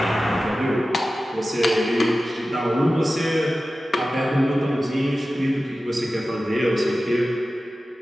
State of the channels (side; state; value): both; normal; correlation 0.95